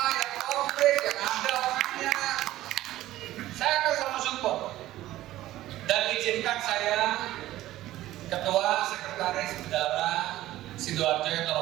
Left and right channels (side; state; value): left; quieter; 15.1 dB